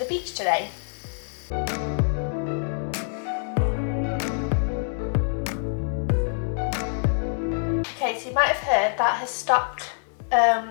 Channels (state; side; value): silent; right; digital silence